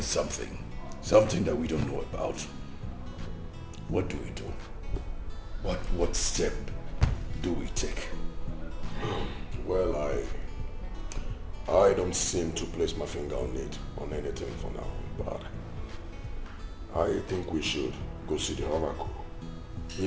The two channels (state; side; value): identical; both; correlation 1.00